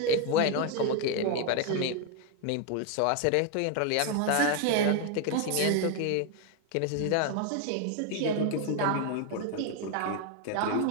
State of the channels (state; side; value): different; both; correlation 0.01